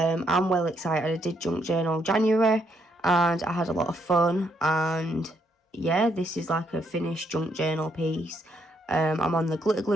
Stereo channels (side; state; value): both; normal; correlation 0.74